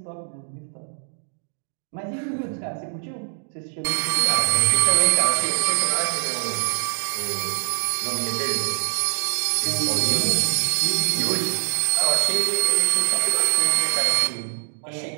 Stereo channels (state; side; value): silent; left; digital silence